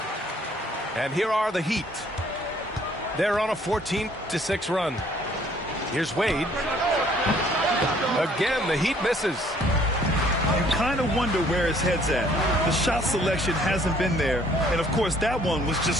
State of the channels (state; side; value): normal; both; correlation 0.60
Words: And here are the Heat. They're on a 14-6 run. Here's Wade. Again, the Heat misses. You kind of wonder where his head's at. The shot selection hasn't been there. And, of course, that one was